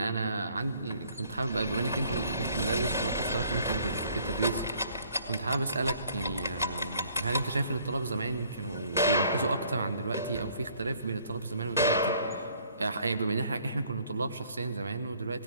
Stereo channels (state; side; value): inverted; both; correlation -0.60